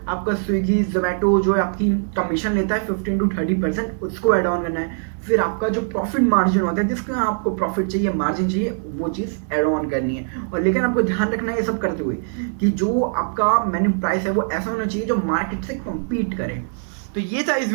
आपका स्विगी, जोमेटो जो आपकी कमीशन लेता है 15 to 30%, उसको ऐड ऑन करना है। फिर आपका जो प्रॉफिट मार्जिन होता है, जिसका आपको प्रॉफिट चाहिए, मार्जिन चाहिए, वो चीज़ ऐड ऑन करनी है। और लेकिन आपको ध्यान रखना है ये सब करते हुए कि जो आपका मेन्यू प्राइस है वो ऐसा होना चाहिए जो मार्केट से कम्पीट करे। तो ये था इस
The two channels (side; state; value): left; silent; digital silence